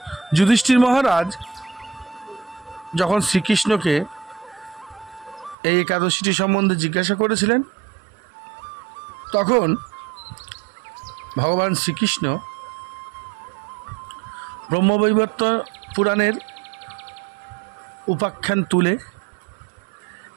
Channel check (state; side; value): drops out; left; at 5.6 s